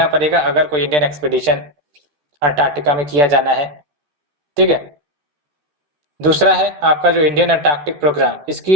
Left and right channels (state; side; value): late; left; 13 ms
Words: पड़ेगा अगर कोई इंडियन एक्सपीडिशन अंटार्कटिका में किया जाना है, ठीक है। दूसरा है आपका जो इंडियन अंटार्कटिक प्रोग्राम,